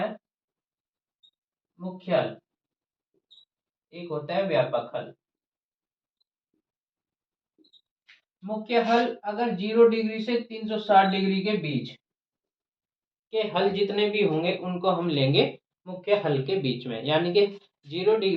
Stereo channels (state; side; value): identical; both; correlation 1.00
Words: मुख्य हल, एक होता है व्यापक हल। मुख्य हल अगर 0 डिग्री से 360 डिग्री के बीच के हल जितने भी होंगे उनको हम लेंगे मुख्य हल के बीच में, यानी कि 0